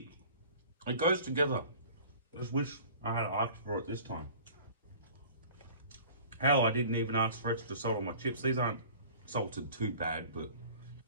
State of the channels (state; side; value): inverted; both; correlation -0.45